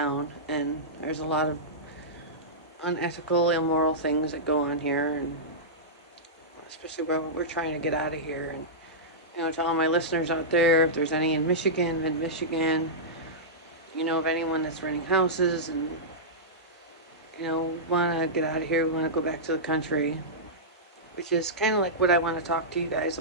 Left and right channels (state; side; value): normal; both; correlation -0.15